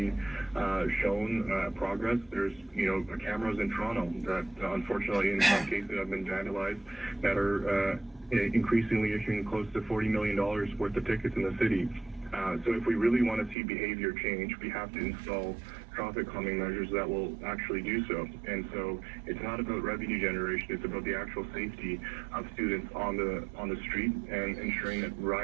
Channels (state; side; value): drops out; left; at 13.6 s